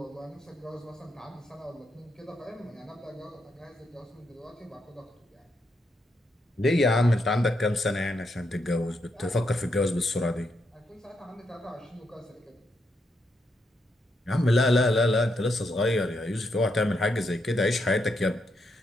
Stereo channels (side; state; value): both; normal; correlation 0.80